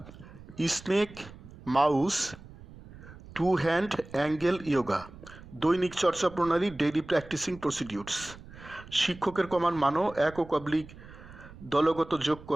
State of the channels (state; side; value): noise; right; rumble, 18 dB below the sound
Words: snake mouse to hand angle yoga. দৈনিক চর্চা প্রণালী ডেইলি প্র্যাকটিসিং প্রসিডিউরস। শিক্ষকের কমান মানো একক অবলিক দলগত যোগ